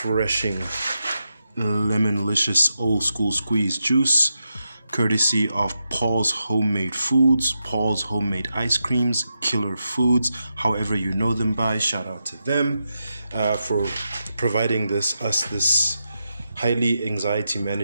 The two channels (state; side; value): inverted; both; correlation -0.87